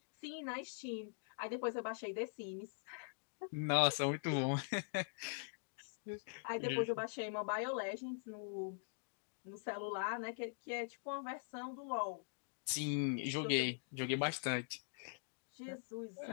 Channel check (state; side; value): silent; right; digital silence